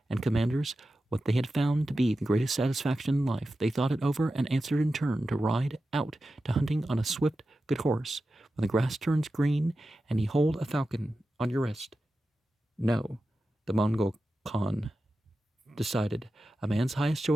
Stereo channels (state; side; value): normal; both; correlation 0.92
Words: and commanders what they had found to be the greatest satisfaction in life. They thought it over and answered in turn to ride out to hunting on a swift, good horse, when the grass turns green and ye hold a falcon on your wrist. No, the Mongol Khan decided a man's highest